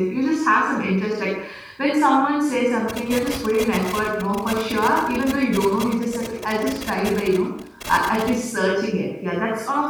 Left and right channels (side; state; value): both; identical; correlation 1.00